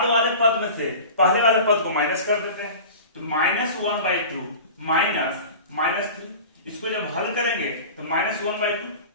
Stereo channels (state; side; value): inverted; both; correlation -0.36